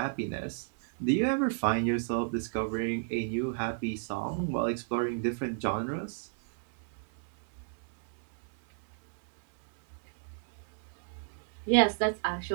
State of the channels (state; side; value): silent; left; 57 dB below the other